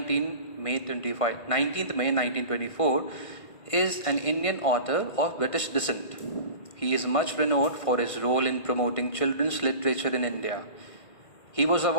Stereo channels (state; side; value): late; right; 1.5 ms